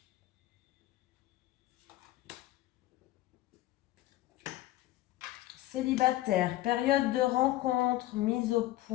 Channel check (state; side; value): quieter; right; 15.9 dB